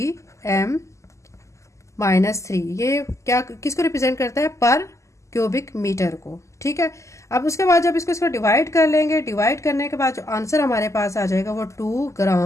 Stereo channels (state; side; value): late; right; 0.14 ms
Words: ये क्या किसको रिप्रेजेंट करता है, पर क्यूबिक मीटर को, ठीक है। अब उसके बाद जब इसको डिवाइड कर लेंगे, डिवाइड करने के बाद जो आंसर हमारे पास आ जाएगा वो 2